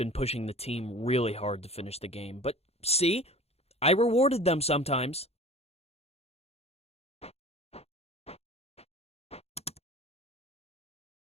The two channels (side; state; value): right; late; 0.30 ms